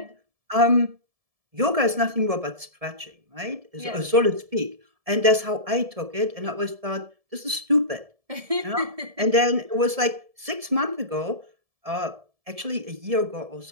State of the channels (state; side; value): late; left; 1.7 ms